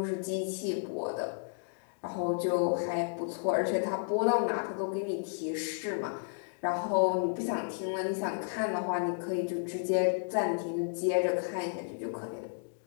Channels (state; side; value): silent; right; digital silence